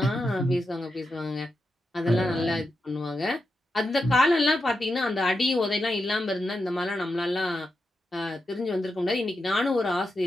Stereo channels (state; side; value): normal; both; correlation 0.87